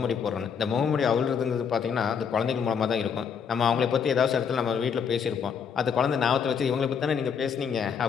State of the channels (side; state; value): right; quieter; 6.9 dB